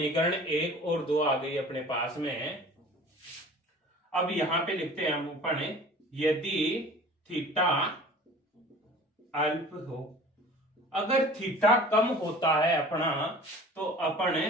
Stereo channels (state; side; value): normal; both; correlation 0.44